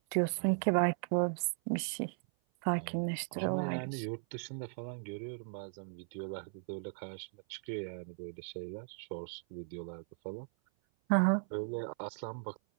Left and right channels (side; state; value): left; silent; 53 dB below the other